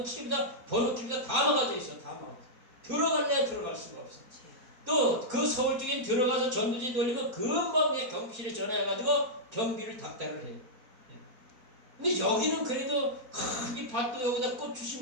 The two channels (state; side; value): late; left; 4.5 ms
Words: 키보다 번호 키보다 다 막아져 있어. 다 막아. 들어갈래야 들어갈 수가 없어. 또 그 서울 쪽엔 들어가서 전도지 돌리면 금방 경비실에 전화해가지고 경비를 닥달을 해요. 근데 여기는 그래도 이 밭도 여기다 꽃